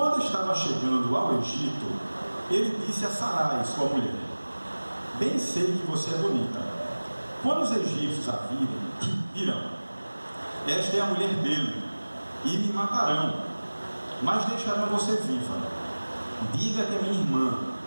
estava chegando ao Egito, ele disse a Sarai, sua mulher: bem sei que você é bonita. Quando os egípcios a virem, dirão: esta é a mulher dele, e me matarão, mas deixarão você viva. Diga que é minha irmã,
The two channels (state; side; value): inverted; both; correlation -1.00